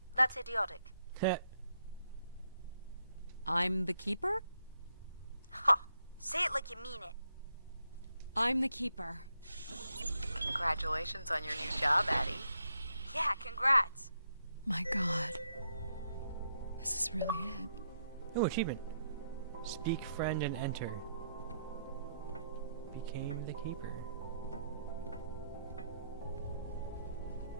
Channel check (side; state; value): both; inverted; correlation -0.78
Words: That's idiotic. I'm the Keeper? Ha! Say it like you mean it. I'm the Keeper. Congratulations on your new job, Addie. Yeah, congrats. My God. This is really it. Oh, achievement. Speak friend and enter. Became the Keeper.